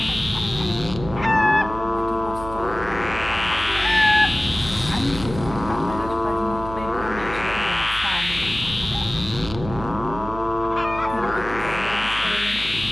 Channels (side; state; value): right; noise; hum, 11 dB below the sound